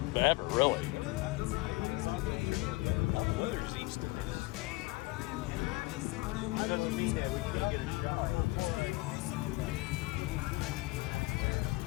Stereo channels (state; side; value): quieter; right; 22.2 dB